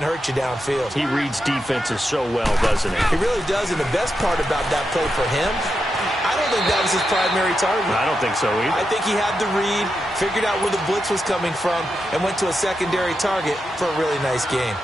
hurt you downfield. He reads defenses so well, doesn't he? He really does, and the best part about that play for him, I don't think that was his primary target. I don't think so either. I think he had the read, figured out where the blitz was coming from, and went to a secondary target for a really nice game.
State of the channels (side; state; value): both; normal; correlation 0.87